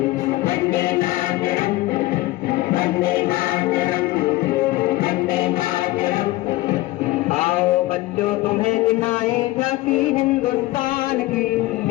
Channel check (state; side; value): quieter; right; 18.6 dB